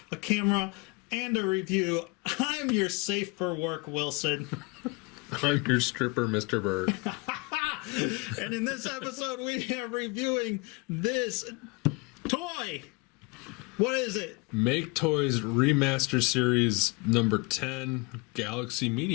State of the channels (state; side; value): quieter; right; 27.4 dB